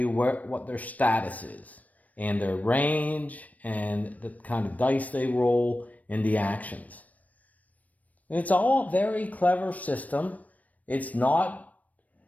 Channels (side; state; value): right; late; 0.072 ms